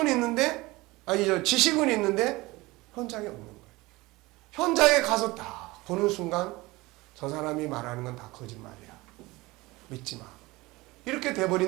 있는데, 지식은 있는데 현장이 없는 거예요. 현장에 가서 딱 보는 순간 저 사람이 말하는 건 다 거짓말이야. 믿지 마. 이렇게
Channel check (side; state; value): left; quieter; 21.3 dB